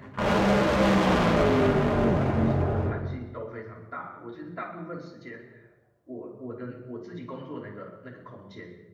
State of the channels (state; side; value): identical; both; correlation 1.00